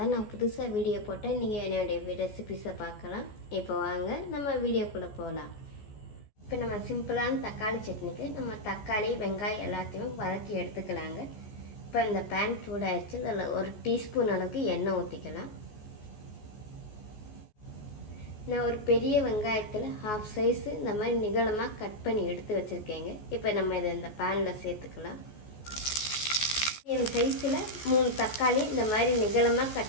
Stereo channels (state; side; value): late; right; 14 ms